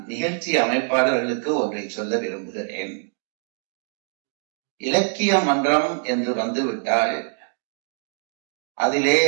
நிகழ்ச்சி அமைப்பாளர்களுக்கு ஒன்றை சொல்ல விரும்புகிறேன். இலக்கிய மன்றம் என்று வந்துவிட்டால் அதிலே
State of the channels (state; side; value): silent; left; 63 dB below the other